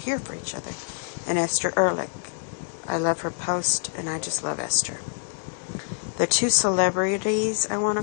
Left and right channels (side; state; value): right; silent; digital silence